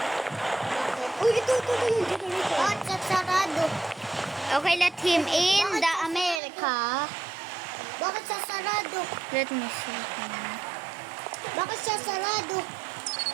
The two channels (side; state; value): left; drops out; at 6.4 s